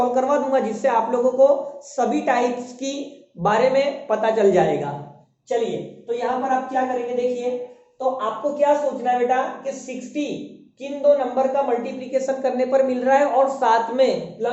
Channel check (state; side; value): identical; both; correlation 1.00